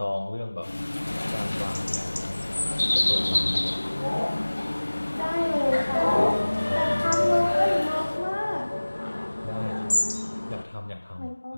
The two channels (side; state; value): both; inverted; correlation -1.00